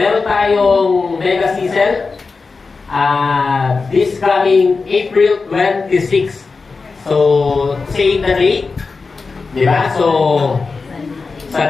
tayong mega season this coming April 26. So, say the date. Diba? So, sa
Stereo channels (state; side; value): quieter; right; 4.3 dB